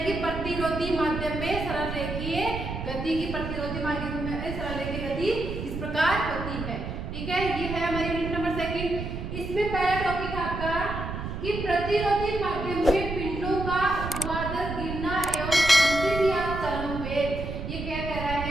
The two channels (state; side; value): noise; right; rumble, 6 dB below the sound